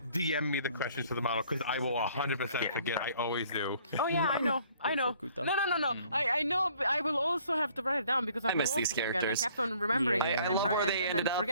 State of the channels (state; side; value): inverted; both; correlation -0.59